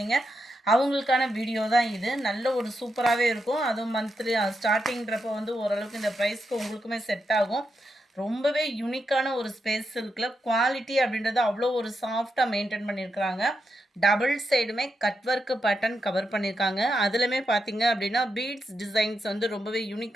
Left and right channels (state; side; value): normal; both; correlation 0.85